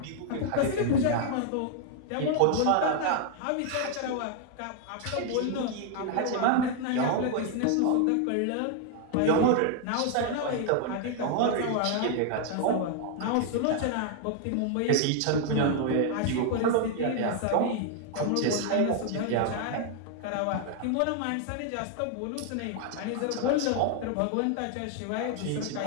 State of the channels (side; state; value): both; different; correlation 0.00